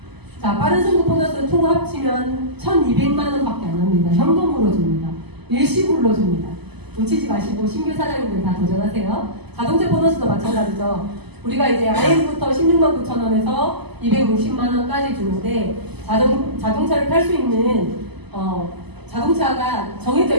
자, 빠른 승급 보너스 총 합치면 1,200만 원밖에 안 합니다. 현금으로 줍니다. 일시불로 줍니다. 놓치지 마시고 신규 사장님들 다 도전하세요. 자동차 보너스도 마찬가지죠. 우리가 이제 IM부터 16만 9천 원에서 260만 원까지 주는데 자동차를 탈 수 있는 자동차가 정해져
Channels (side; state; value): left; late; 0.99 ms